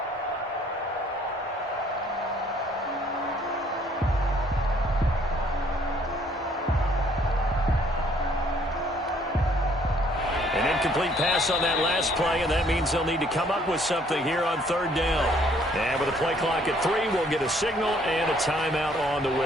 Incomplete pass on that last play, and that means they'll need to come up with something here on 3rd down. And with a play clock at 3, we'll get a signal and a timeout on the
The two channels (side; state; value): both; normal; correlation 0.62